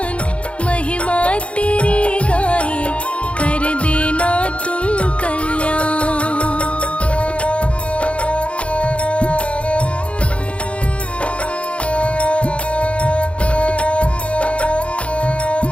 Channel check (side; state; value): right; late; 0.061 ms